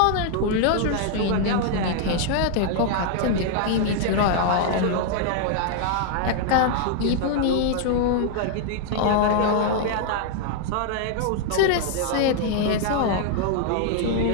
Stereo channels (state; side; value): different; both; correlation 0.00